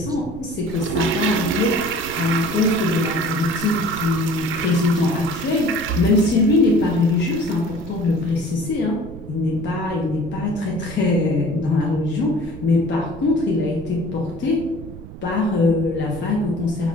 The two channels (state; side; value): noise; right; rumble, 14 dB below the sound